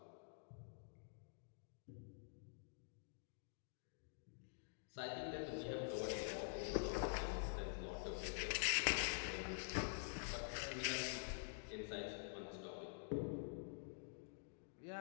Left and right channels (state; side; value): silent; right; digital silence